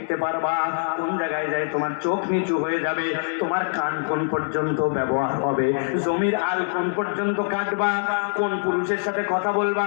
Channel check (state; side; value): silent; right; 63 dB below the other